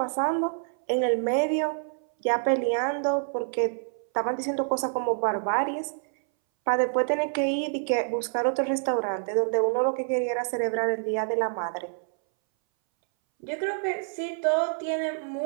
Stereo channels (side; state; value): left; silent; 60 dB below the other